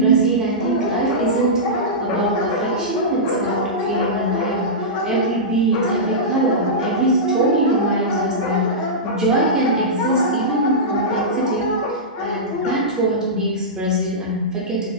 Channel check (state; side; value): normal; both; correlation -0.14